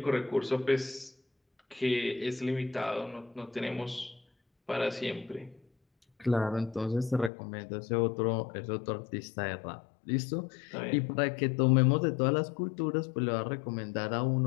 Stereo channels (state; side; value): drops out; right; at 7.3 s